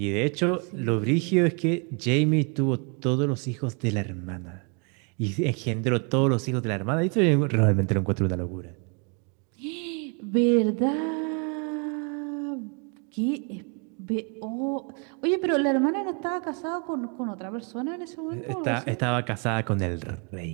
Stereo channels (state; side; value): quieter; left; 35.7 dB